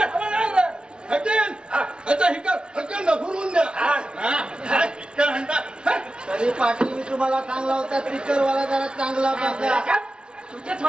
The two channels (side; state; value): left; late; 0.055 ms